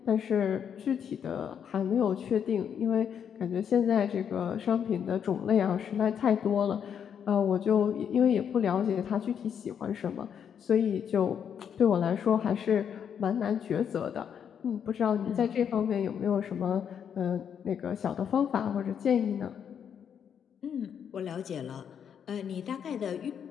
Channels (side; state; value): right; quieter; 8.1 dB